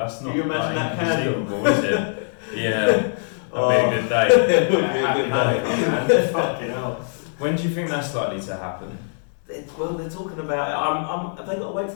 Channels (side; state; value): right; silent; digital silence